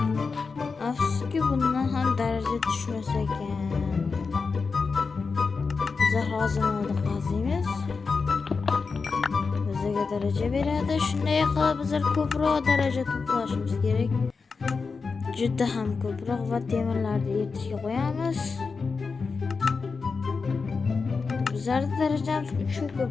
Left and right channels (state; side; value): quieter; right; 4.7 dB